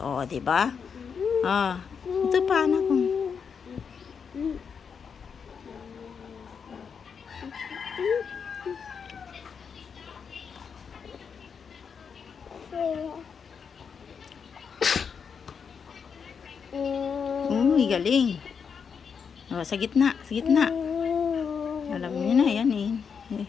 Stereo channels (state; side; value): quieter; right; 6.4 dB